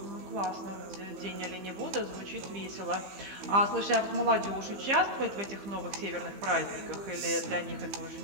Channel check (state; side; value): late; left; 15 ms